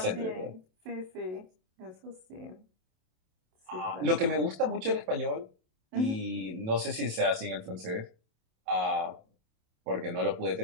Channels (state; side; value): late; left; 27 ms